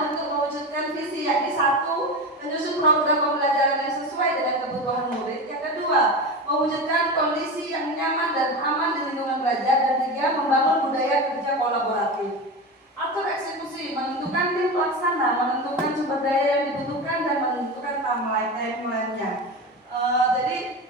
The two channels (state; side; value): normal; both; correlation 0.24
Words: untuk mewujudkan visi, yakni 1, menyusun program pembelajaran yang sesuai dengan kebutuhan murid. Yang kedua, mewujudkan kondisi yang nyaman dan aman di lingkungan belajar. Dan 3, membangun budaya kerja kolaboratif. Atur eksekusi, menentukan tim pelaksana, menentukan sumber daya yang dibutuhkan, dan menentukan timeline-nya. Jadi